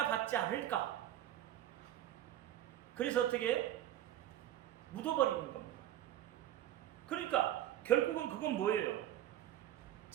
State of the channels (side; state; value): left; quieter; 12.5 dB